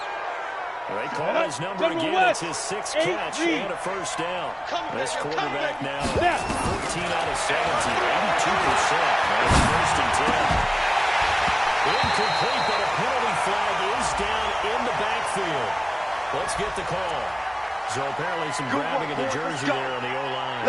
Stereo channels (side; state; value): both; identical; correlation 1.00